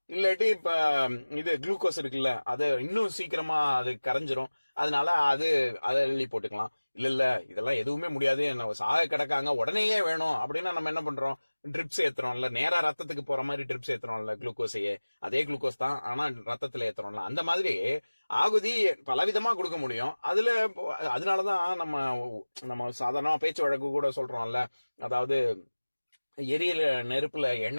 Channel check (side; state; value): both; inverted; correlation -1.00